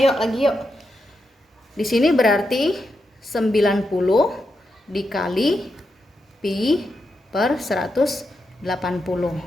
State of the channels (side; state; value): both; normal; correlation 0.85